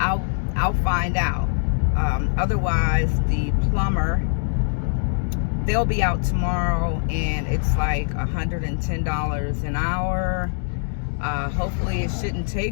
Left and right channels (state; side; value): silent; right; 64 dB below the other